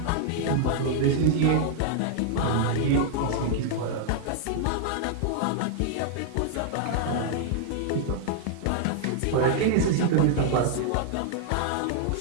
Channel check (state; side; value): different; both; correlation 0.00